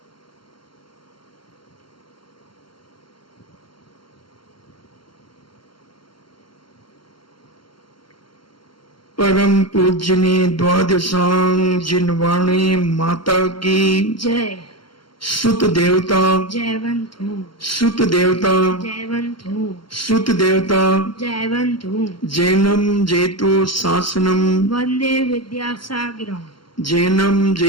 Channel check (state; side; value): late; right; 0.73 ms